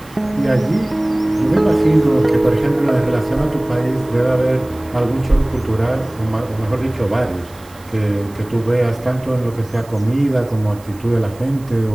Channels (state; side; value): noise; right; hiss, 24 dB below the sound